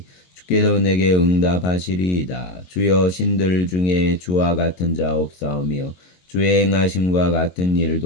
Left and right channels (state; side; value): late; right; 22 ms